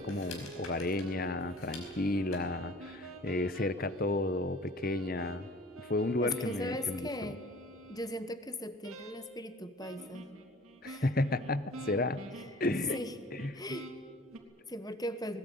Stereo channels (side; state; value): both; normal; correlation 0.48